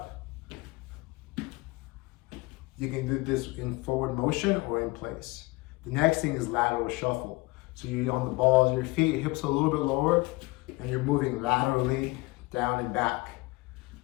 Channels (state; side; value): quieter; right; 23.7 dB